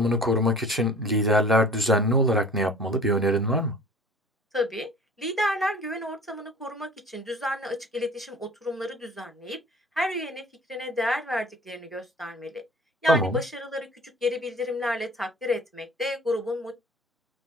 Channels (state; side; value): normal; both; correlation 0.46